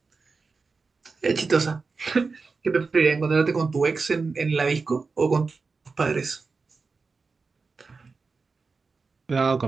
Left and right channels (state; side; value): quieter; left; 4.4 dB